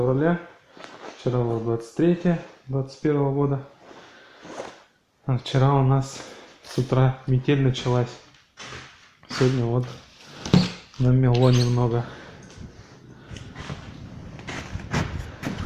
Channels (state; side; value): identical; both; correlation 1.00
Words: вчера было 23 21 года. А вчера у нас с утра метель началась. Сегодня вот намело немного.